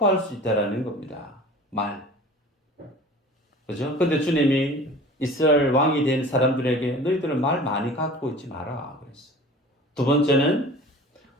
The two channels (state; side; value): normal; both; correlation 0.41